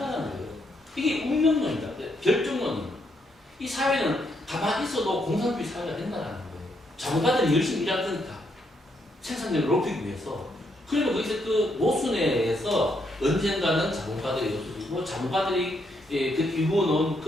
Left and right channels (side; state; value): both; normal; correlation 0.76